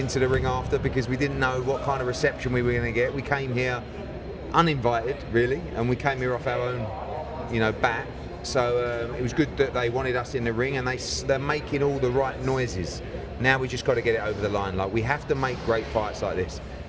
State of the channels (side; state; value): both; identical; correlation 1.00